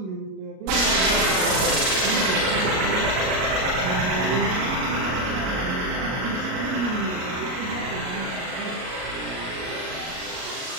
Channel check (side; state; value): left; late; 38 ms